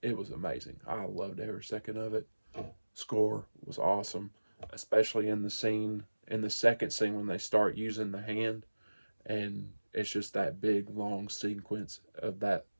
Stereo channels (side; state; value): both; inverted; correlation -1.00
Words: It was amazing. I loved every second of it. Score was awesome, especially in the second scene when they start using the hand, and it's just that big long sequence of